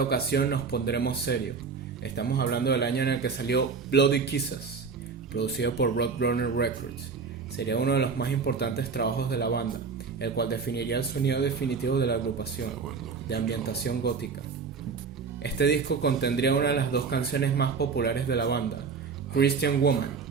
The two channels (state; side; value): quieter; left; 5.3 dB